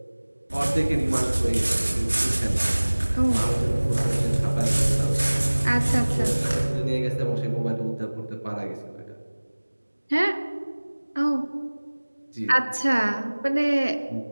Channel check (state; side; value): inverted; both; correlation -1.00